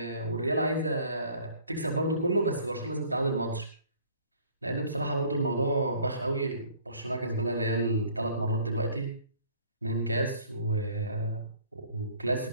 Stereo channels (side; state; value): both; inverted; correlation -0.55